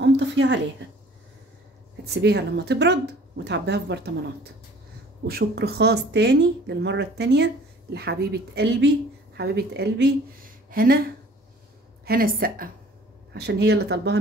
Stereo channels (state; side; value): normal; both; correlation 0.51